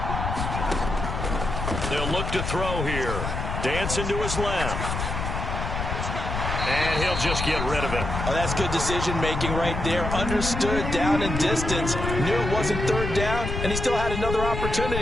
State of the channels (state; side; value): noise; left; rumble, 3 dB below the sound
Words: They'll look to throw here. Dancing to his left. And he'll just get rid of it. Oh, that's good decision-making right there. Understood down and distance. Knew it wasn't third down, and he still had another